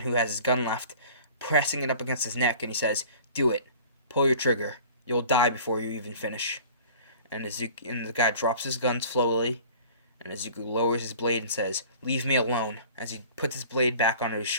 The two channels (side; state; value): both; inverted; correlation -0.45